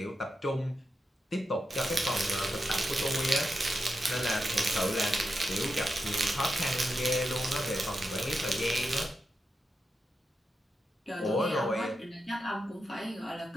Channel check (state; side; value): normal; both; correlation 0.88